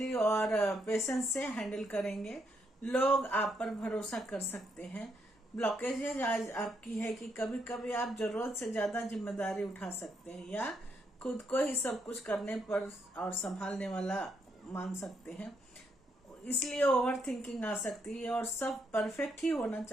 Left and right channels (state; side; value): normal; both; correlation 0.77